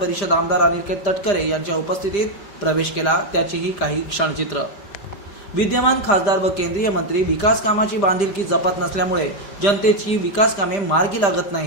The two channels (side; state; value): right; late; 5.0 ms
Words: आमदार अनिकेत तटकरे यांच्या उपस्थितीत प्रवेश केला। त्याचीही काही क्षणचित्र। विद्यमान खासदार व केंद्रीय मंत्री विकास कामाची बांधिलकी जपत नसल्यामुळे जनतेची विकास कामे मार्गी लागत